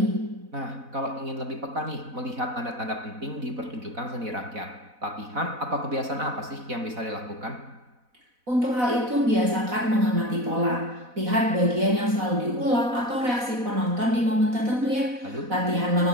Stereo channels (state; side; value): late; left; 4.0 ms